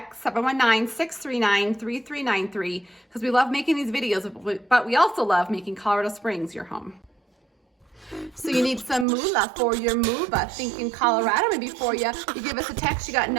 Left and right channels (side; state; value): left; drops out; at 9.1 s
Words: 719-639-3393, because we love making these videos, but we also love making Colorado Springs your home. So you need some moolah for your move. Thinking Colorado maybe for you. You give us a text, you got